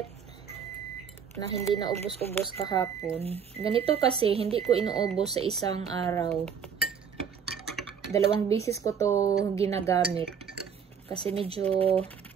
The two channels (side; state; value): left; quieter; 7.2 dB